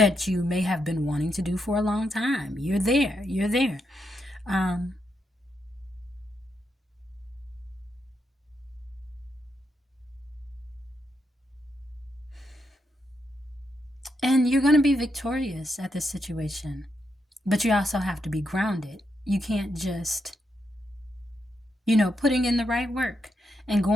you may have been wanting to do for a long time. You're there. And you're going to be victorious at this situation. But you also have to be grounded. You can't just, putting in the right work and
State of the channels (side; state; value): both; normal; correlation 0.82